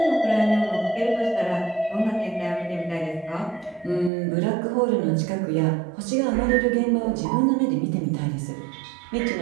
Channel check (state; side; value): drops out; left; at 4.1 s